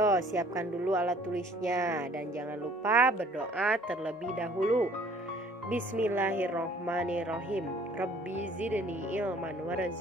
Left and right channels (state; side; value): normal; both; correlation 0.55